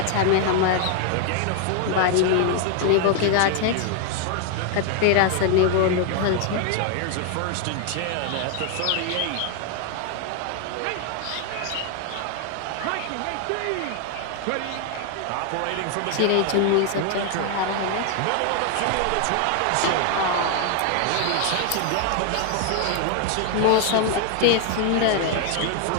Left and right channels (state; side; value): different; both; correlation 0.00